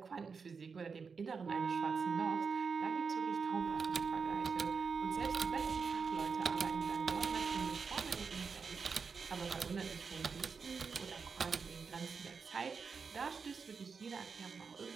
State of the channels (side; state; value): left; quieter; 5.4 dB